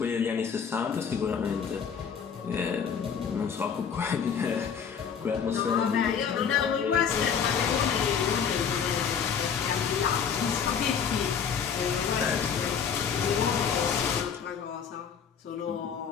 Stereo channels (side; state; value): right; quieter; 7.1 dB